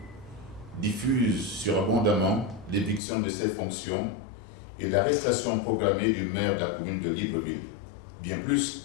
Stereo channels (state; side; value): drops out; right; at 3.0 s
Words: diffusent surabondamment l'éviction de ses fonctions et l'arrestation programmée du maire de la commune de Libreville. Bien